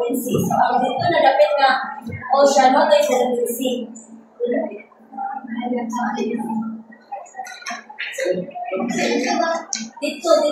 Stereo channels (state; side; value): identical; both; correlation 1.00